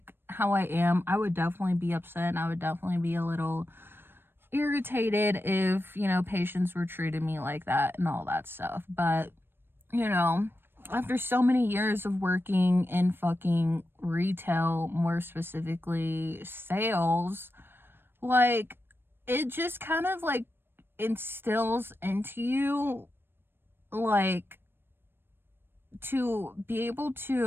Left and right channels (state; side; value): late; left; 0.10 ms